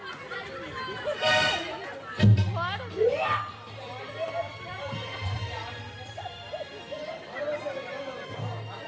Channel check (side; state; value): both; identical; correlation 1.00